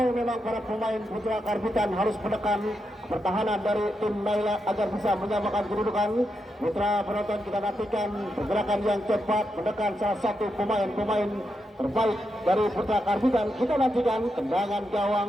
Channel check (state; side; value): normal; both; correlation 0.84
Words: memang para pemain Putra Karbitan harus menekan pertahanan dari tim Naila agar bisa menyamakan kedudukan. Mitra penonton, kita nantikan pergerakan yang cepat menekan salah satu pemain-pemain terbaik dari Putra Karbitan. Kita nantikan tendangan gawang